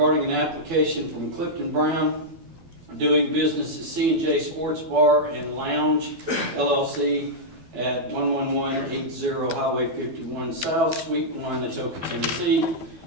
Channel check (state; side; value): late; left; 12 ms